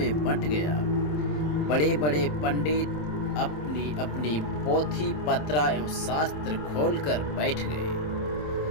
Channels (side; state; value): right; late; 27 ms